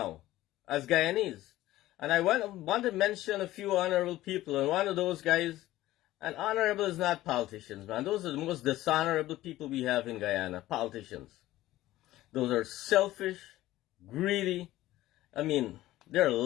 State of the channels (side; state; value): right; quieter; 15.8 dB